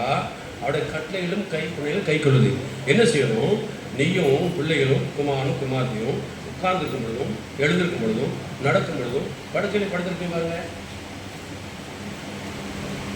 அவருடைய கட்டளைகளும் கை கொள்ளுது. என்ன செய்யணும்? நீயும் பிள்ளைகளும் குமாரனும் குமார்த்தியும் உட்கார்ந்துருக்கும் பொழுதும் எழுந்திருக்கும் பொழுதும் நடக்கும் பொழுதும் படுக்கையில படுத்திருக்கேன் பாருங்க.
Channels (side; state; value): both; identical; correlation 1.00